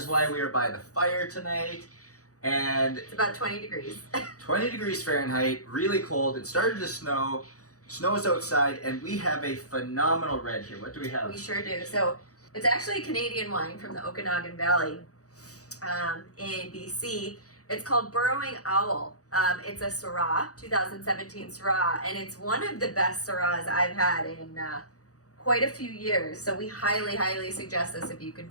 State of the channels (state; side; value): late; right; 0.66 ms